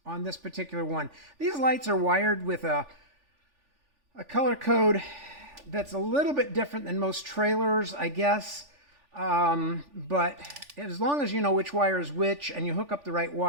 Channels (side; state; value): left; late; 3.4 ms